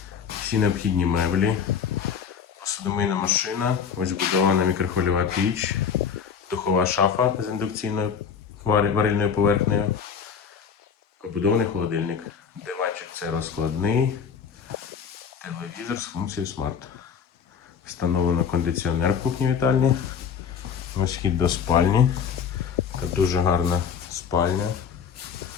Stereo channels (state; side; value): quieter; right; 7.0 dB